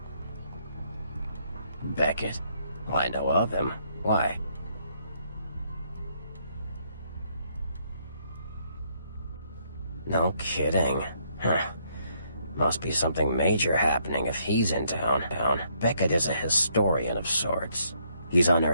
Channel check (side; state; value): both; inverted; correlation -0.71